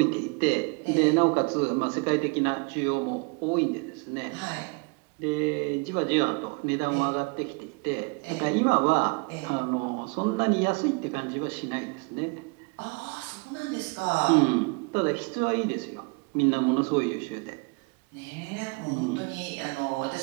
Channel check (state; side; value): quieter; left; 31.5 dB